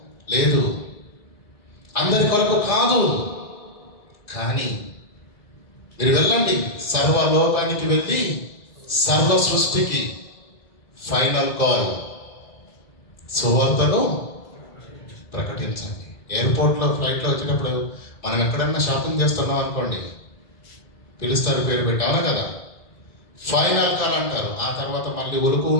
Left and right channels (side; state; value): right; late; 1.6 ms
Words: లేదు. అందరి కొరకు కాదు, కానీ మీరు వెళ్ళండి, సర్వలోకానికి వెళ్ళి సర్వ సృష్టికి ఫైనల్ కాల్, సువార్తను ప్రకటించండి. ఎయిర్పోర్ట్లో ఫ్లైట్లో వచ్చేటప్పుడు మనం ఎక్కడన్నా షాపింగ్ చేస్తున్నాం అనుకోండి, పిలుస్తారు పేరు పెట్టి, అవునా కదా? ఫైనల్ కాల్ అంటారు. ఆ తర్వాత మళ్ళీ ఉలుకు